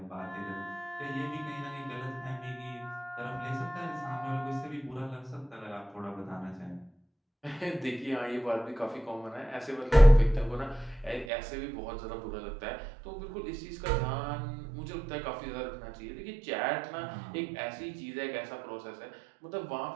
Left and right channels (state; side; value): drops out; left; at 11.2 s